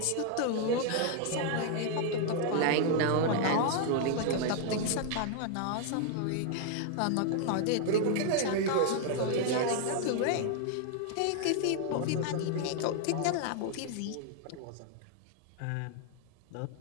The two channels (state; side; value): different; both; correlation 0.00